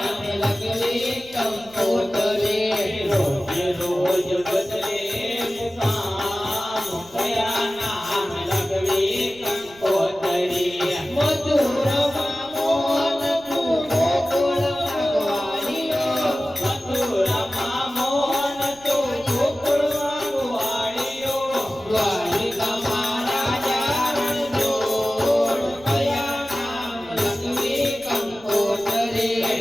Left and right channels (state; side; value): noise; right; rumble, 25 dB below the sound